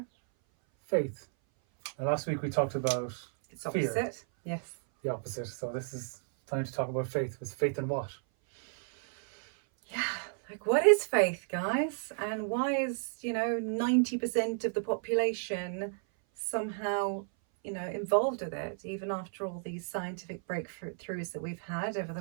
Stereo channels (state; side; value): silent; left; 56 dB below the other